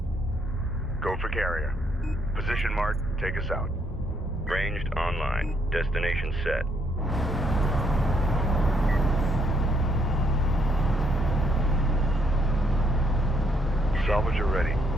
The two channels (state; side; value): normal; both; correlation 0.71